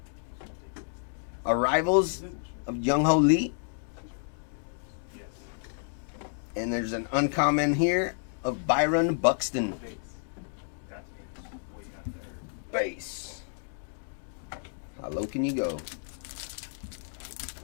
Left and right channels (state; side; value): silent; right; digital silence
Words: Arrivals of Young Ho Lee. And there's an uncommon here of Byron Buxton. Base. How low can you go?